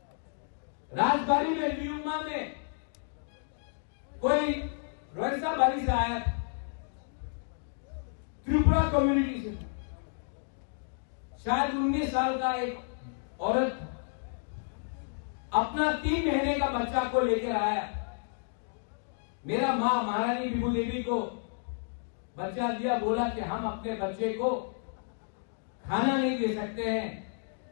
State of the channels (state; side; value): silent; right; digital silence